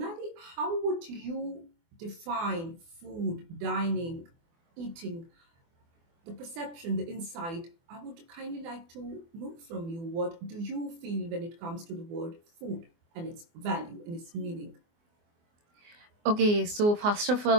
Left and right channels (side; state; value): left; late; 24 ms